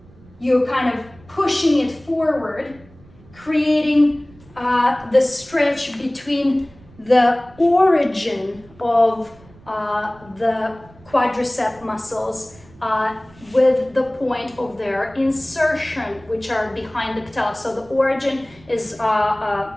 You're kind of pushing it forward, creating the stretch between the origin of the quadricep muscles with the point of their insertion, which are behind the patella. So the origin is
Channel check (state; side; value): noise; right; rumble, 25 dB below the sound